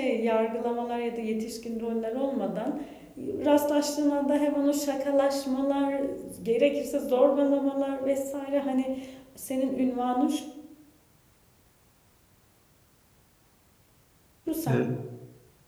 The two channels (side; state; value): both; identical; correlation 1.00